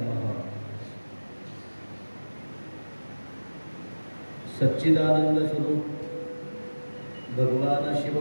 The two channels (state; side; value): inverted; both; correlation -1.00